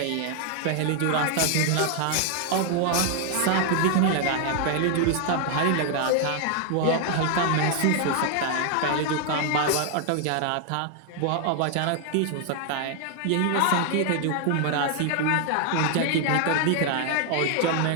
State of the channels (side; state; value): both; different; correlation 0.00